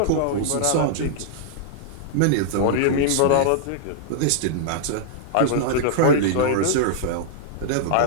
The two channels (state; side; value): different; both; correlation -0.01